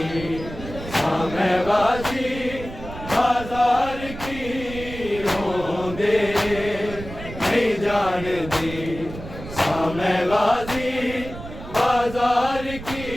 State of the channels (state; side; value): noise; right; rumble, 12 dB below the sound